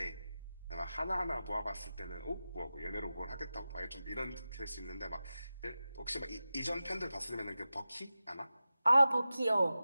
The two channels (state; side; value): inverted; both; correlation -0.94